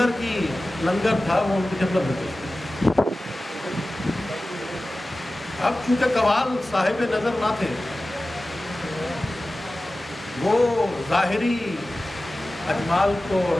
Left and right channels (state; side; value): normal; both; correlation 0.96